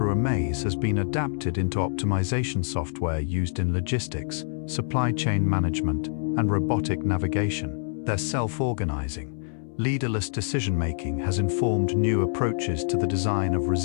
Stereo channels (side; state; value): right; silent; 61 dB below the other